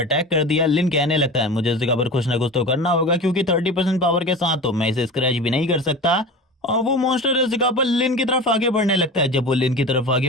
कर दिया। लिन कहने लगता है मुझे इस जगह पर कुछ ना कुछ तो करना होगा क्योंकि 30% पावर के साथ तो मैं इसे स्क्रैच भी नहीं कर सकता। और वो मॉन्स्टर इस जगह पर लिन की तरफ आगे बढ़ने लगता है। जब वो लिन की तरफ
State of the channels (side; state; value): both; normal; correlation 0.32